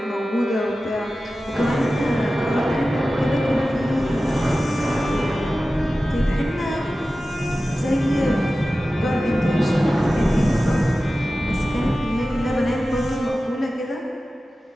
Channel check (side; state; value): both; normal; correlation 0.95